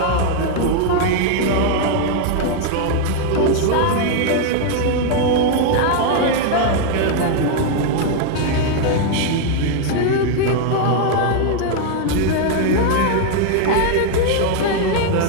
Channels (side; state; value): both; different; correlation 0.00